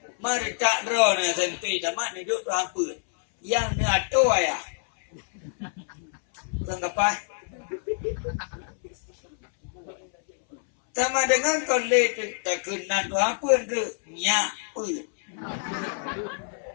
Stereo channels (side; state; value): right; silent; 60 dB below the other